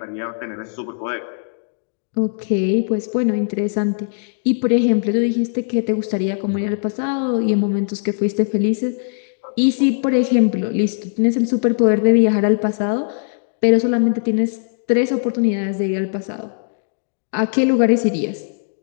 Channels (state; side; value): silent; right; digital silence